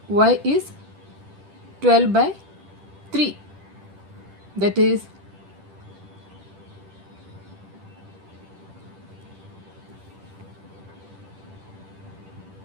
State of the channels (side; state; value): left; late; 10 ms